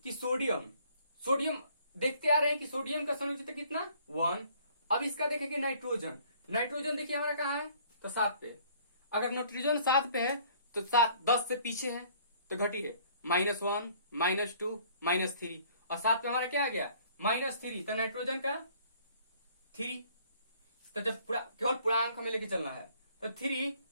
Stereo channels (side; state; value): both; inverted; correlation -0.58